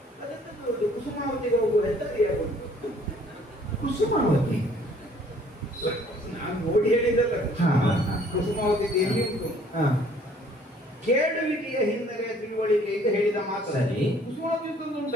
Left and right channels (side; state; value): both; normal; correlation 0.58